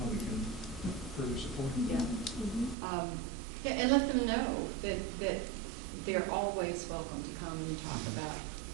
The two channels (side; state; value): left; drops out; at 2.8 s